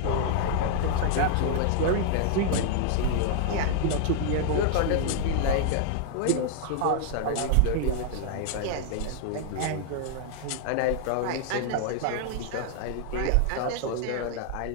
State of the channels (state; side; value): different; both; correlation 0.00